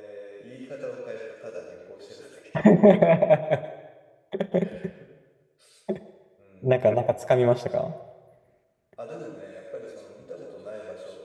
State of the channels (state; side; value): identical; both; correlation 1.00